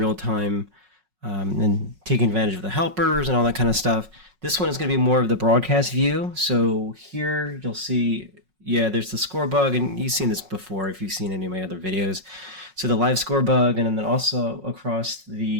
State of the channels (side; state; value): left; late; 5.4 ms